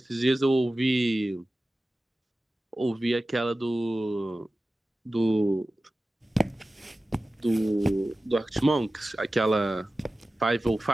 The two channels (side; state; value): both; normal; correlation 0.95